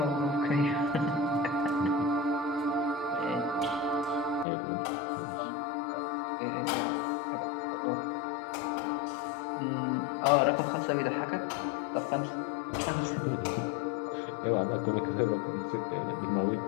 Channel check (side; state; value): right; drops out; at 4.5 s